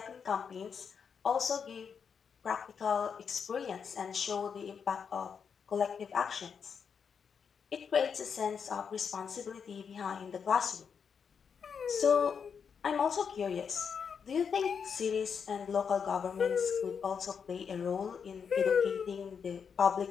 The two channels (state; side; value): quieter; right; 6.6 dB